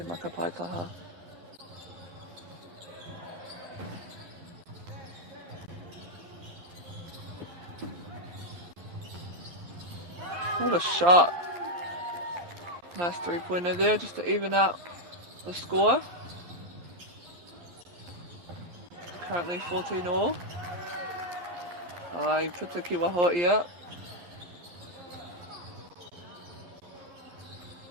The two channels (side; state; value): left; late; 11 ms